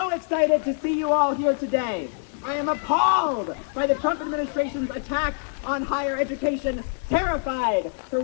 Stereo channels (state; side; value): silent; right; 62 dB below the other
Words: excited to see you all here today. I am appalled by the Trump administration's attack on higher education, terrified for